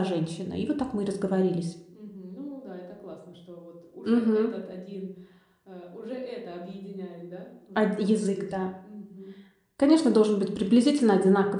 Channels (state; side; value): identical; both; correlation 1.00